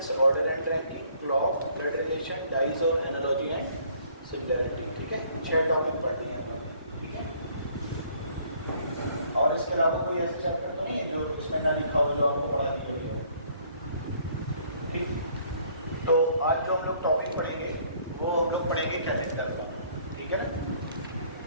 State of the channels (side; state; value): both; inverted; correlation -0.61